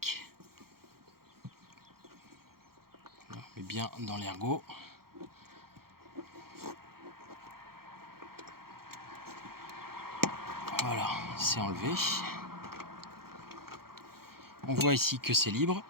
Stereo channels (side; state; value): left; late; 0.94 ms